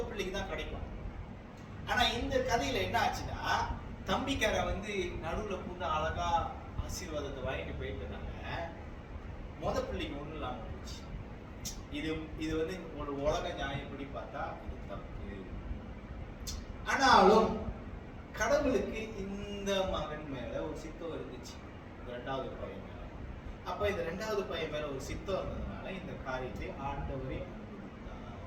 பிள்ளைக்கு தான் கிடைக்கும். ஆனா இந்த கதையில என்ன ஆச்சுன்னா, தம்பிக்கார வந்து நடுவுல பூந்து அழகா ஆசீர்வாதத்தை வாங்கிட்டு போயிட்டனால மொத பிள்ளைக்கு ஒண்ணும் இல்லாம போச்சு. இது வந்து ஒரு உலக நியாயப்படி பார்த்தா இது தப்பு. ஆனாலும் கடவுளுக்கு இந்த மகன் மேல ஒரு சித்தம் இருந்துச்சு, 2வது பையன் மேல. அப்ப இந்த 2வது பையன் மேல ஒரு சித்தம் இருந்ததுனால இந்த காரியத்தை ஆண்டவரே அனுமதித்தார்.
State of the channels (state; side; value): identical; both; correlation 1.00